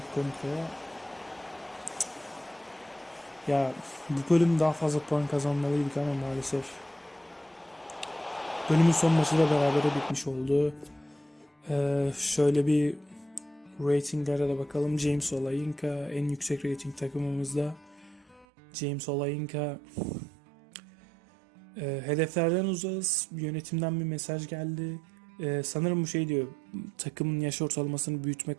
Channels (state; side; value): drops out; left; at 18.4 s